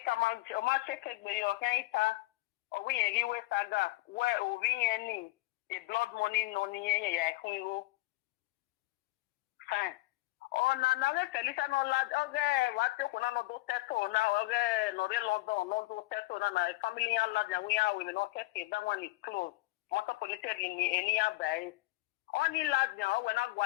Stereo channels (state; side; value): quieter; right; 20.4 dB